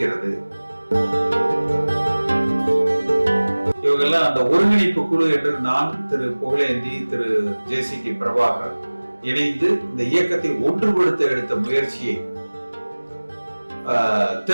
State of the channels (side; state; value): both; inverted; correlation -1.00